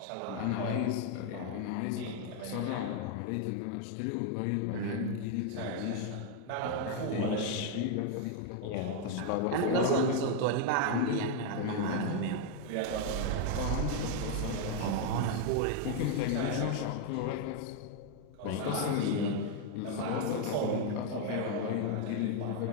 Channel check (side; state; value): both; different; correlation 0.01